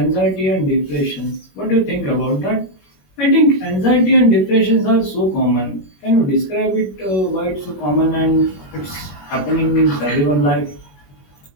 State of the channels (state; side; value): late; right; 21 ms